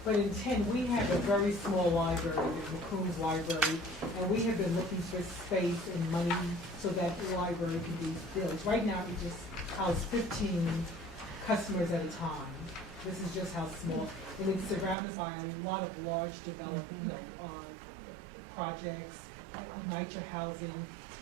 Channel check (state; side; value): drops out; left; at 15.0 s